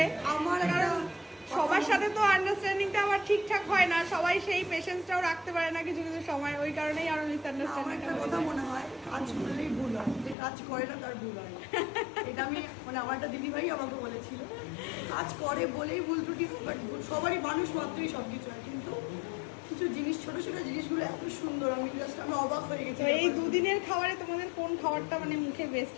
আমার একটা সবার সাথে তো আন্ডারস্ট্যান্ডিংটা আবার ঠিকঠাক হয় না, সবাই সেই পেশেন্সটাও রাখতে পারে না কিছু কিছু সময়, ওই কারণেই আরো আমার মিসআন্ডারস্ট্যান্ডিং একটা কথা মনে হয়, কাজ করলেই ভুল হয়, যে কাজ করে না তার ভুল হয়। এটা আমি আমার একটা দিদিভাই আমাকে বলেছিল, কাজ করে বলেই ভুল ত্রুটি হয়, বাট সবারই মানুষ মাত্রই সব কিছু হয়। কিন্তু কিছু জিনিস, ছোট ছোট জিনিসগুলো এত সুন্দর, আমি অবাক হয়ে গেছি। তো এই দুদিনের খাবারে তোমাদের কোন খাবারটা মানে মুখে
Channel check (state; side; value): drops out; right; at 10.4 s